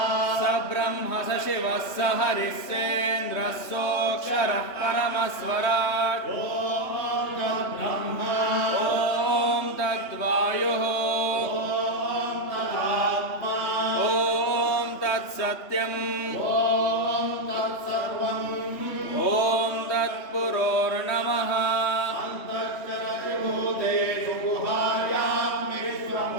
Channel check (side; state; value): right; late; 3.1 ms